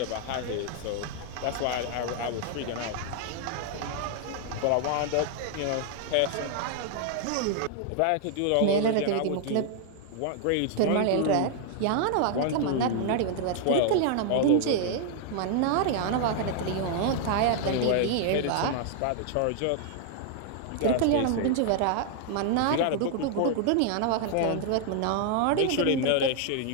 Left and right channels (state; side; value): different; both; correlation 0.00